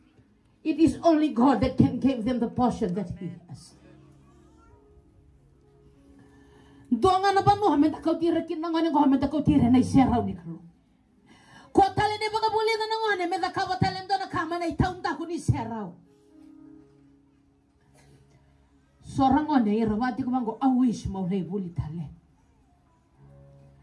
It is only God that can give them the portion that He has. Doanga na ba no hamen takau tira kinanga ni hamen takau tira na iseraw ni kalo. Ko tale ni baga buli na ngone me da kawa tale ndo na kama na itaun ta ko ni seraw. Sorang ngone irawati ko mango awish mo lay buli tale.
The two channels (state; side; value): identical; both; correlation 1.00